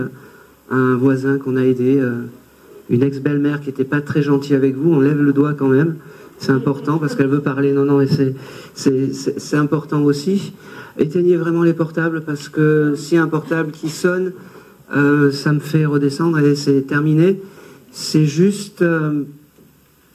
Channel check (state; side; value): identical; both; correlation 1.00